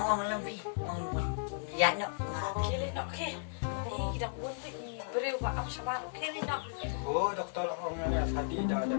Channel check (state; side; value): silent; right; digital silence